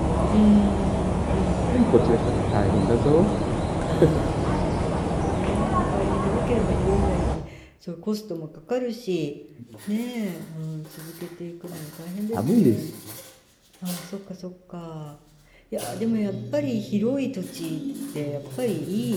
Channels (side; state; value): both; identical; correlation 1.00